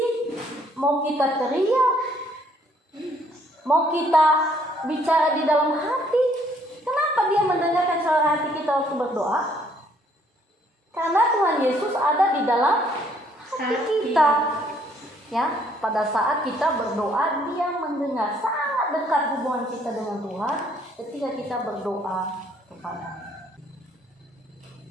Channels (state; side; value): normal; both; correlation 0.65